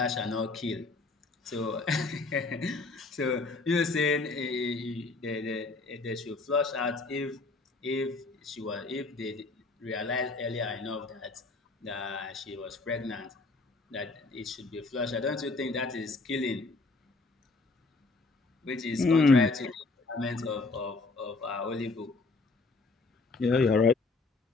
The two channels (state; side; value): quieter; right; 3.7 dB